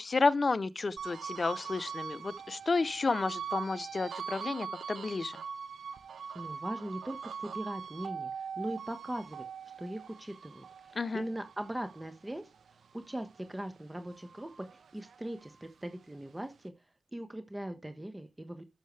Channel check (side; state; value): both; normal; correlation 0.92